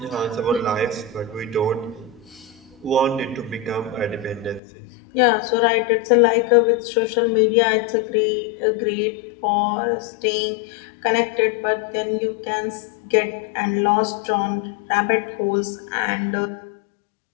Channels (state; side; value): drops out; right; at 4.6 s